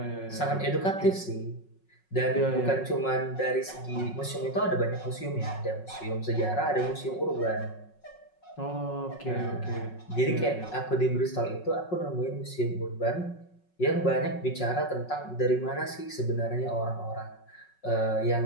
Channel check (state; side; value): late; right; 5.4 ms